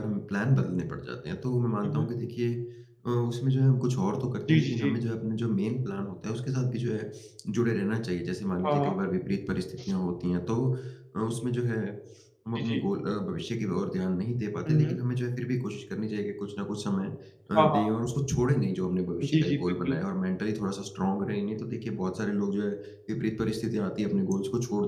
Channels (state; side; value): identical; both; correlation 1.00